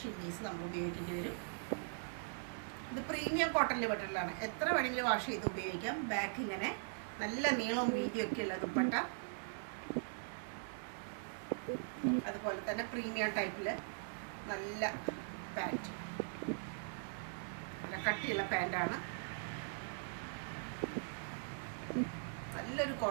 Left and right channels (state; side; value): silent; left; digital silence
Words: ഷിമ്മീസ് നമ്മൾ ഉപയോഗിക്കേണ്ടി വരും. ഇത് പ്രീമിയം കോട്ടണിൽ പെട്ടിട്ടുള്ളതാണ്. എത്ര വേണമെങ്കിലും വാഷ് ചെയ്ത് ഉപയോഗിക്കാം. ബാക്ക് ഇങ്ങനെ നല്ല നീളവും വീതിയൊക്കെ ഉള്ള ദുപ്പട്ട. അതുപോലെ തന്നെ പ്രീമിയം ടൈപ്പിൽ നല്ല പാൻറ്റ്, നല്ല കട്ടിയുള്ള പാൻറ്റാണ്. നല്ലൊരു